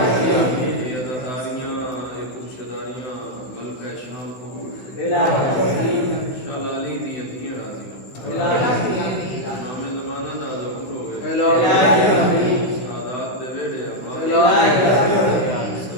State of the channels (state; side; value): late; right; 16 ms